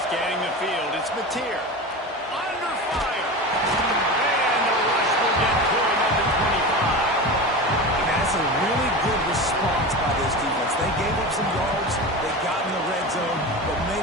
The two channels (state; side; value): normal; both; correlation 0.27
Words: Scanning the field, it's Mateer. Under fire. And the rush will get to him at the 25. That's a really good response by this defense. They gave up some yards, they got in the red zone, but